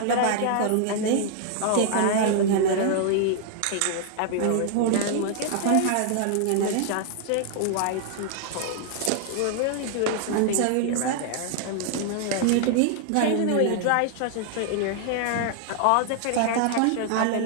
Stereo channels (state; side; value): different; both; correlation 0.00